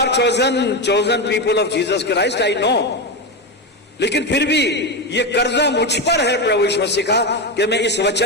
chosen people of Jesus Christ, I know. लेकिन फिर भी ये कर्जा मुझ पर है प्रभु यीशु मसीह का, कि मैं इस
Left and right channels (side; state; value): both; normal; correlation 0.13